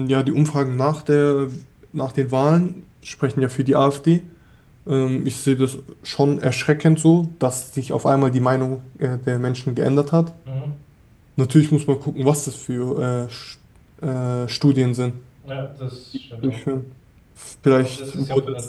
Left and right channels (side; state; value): both; identical; correlation 1.00